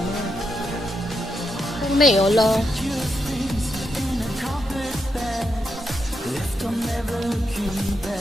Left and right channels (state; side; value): normal; both; correlation 0.83